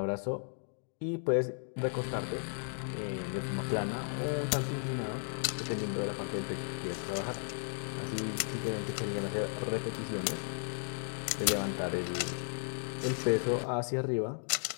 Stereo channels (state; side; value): silent; right; digital silence